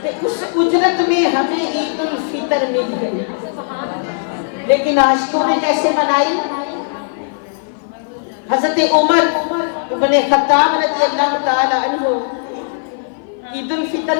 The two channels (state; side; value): silent; right; 56 dB below the other